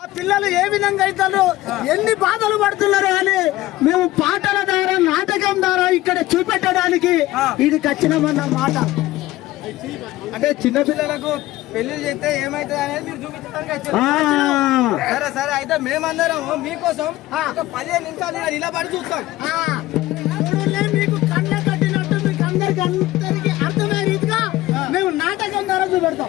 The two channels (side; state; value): right; quieter; 16.7 dB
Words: ఏ విధంగా అవుతారు, ఎన్ని బాధలు పడుతున్నారు అని మేము పాటల ద్వారా, నాటకం ద్వారా ఇక్కడ చూపెట్టడానికి ఇది ఖచ్చితమన్న మాట. అంటే చిన్న పిల్లలకు పెళ్లి చేస్తే ఏమైతుంది అనేది మీరు చూపించడానికి వచ్చారు. సరే సరే, అయితే మేమందరం మీకోసం ఒక 15 నిమిషాలు నిలబడి చూస్తాం. మీకు కళ్ళ కట్టినట్టు మీకు అందరికి అర్థమయ్యే రీతిగా మేము నాటకం ద్వారా చూపెడతాం.